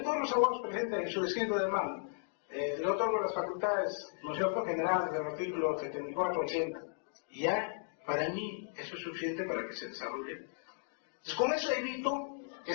todos los abogados presentan en su escrito de mano, le otorgo las facultades, ¿no es cierto?, generales del artículo 74-80. Y ya, para mí, eso es suficiente para que se desarrolle. Entonces, con eso evito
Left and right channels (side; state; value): right; silent; digital silence